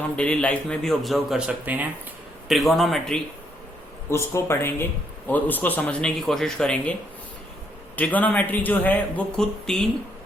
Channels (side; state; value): both; normal; correlation 0.73